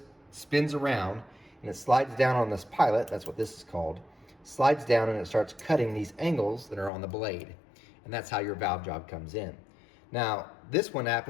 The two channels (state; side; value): drops out; right; at 6.9 s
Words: spins around and it slides down on this pilot. That's what this is called. Slides down and it starts cutting these angles that are on the blade. And that's how your valve job comes in. Now, this one